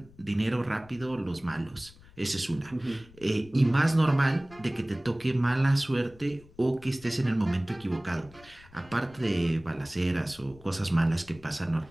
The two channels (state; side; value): noise; left; rumble, 23 dB below the sound